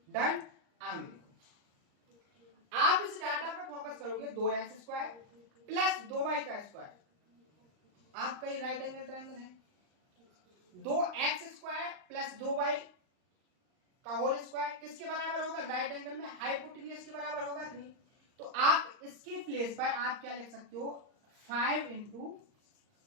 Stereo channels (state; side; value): late; left; 38 ms